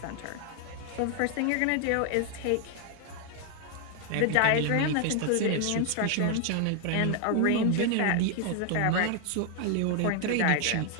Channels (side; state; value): both; different; correlation 0.00